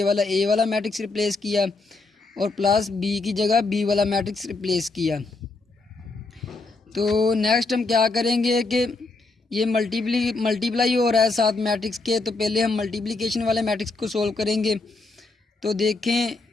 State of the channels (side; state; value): right; quieter; 3.5 dB